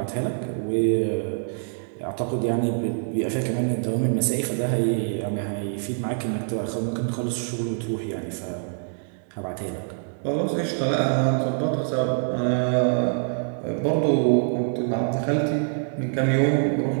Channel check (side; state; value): left; silent; digital silence